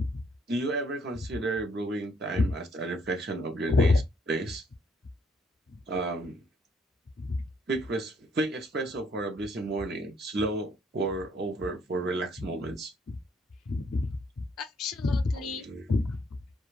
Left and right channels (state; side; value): normal; both; correlation 0.68